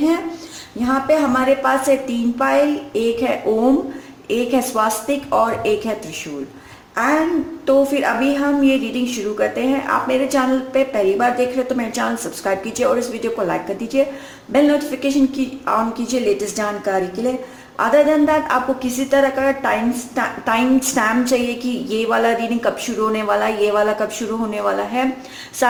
यहाँ पे हमारे पास है 3 पाइल, एक है ओम, एक है स्वास्तिक और एक है त्रिशूल। एंड तो फिर अभी हम ये रीडिंग शुरू करते हैं। आप मेरे चैनल पे पहली बार देख रहे हो तो मेरे चैनल सब्सक्राइब कीजिए और इस वीडियो को लाइक कर दीजिए। बेल नोटिफिकेशन की ऑन कीजिए लेटेस्ट जानकारी के लिए। अदर देन दैट, आपको किसी तरह का टाइम स्टैम्प चाहिए कि ये वाला रीडिंग कब शुरू होने वाला है, ये वाला कब शुरू होने वाला है,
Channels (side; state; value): both; identical; correlation 1.00